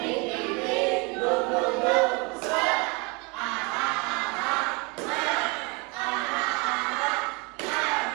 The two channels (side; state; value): left; quieter; 28.2 dB